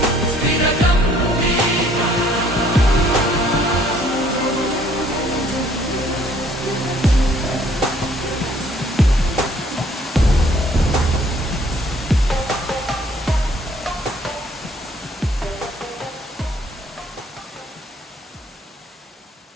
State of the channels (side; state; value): both; normal; correlation 0.60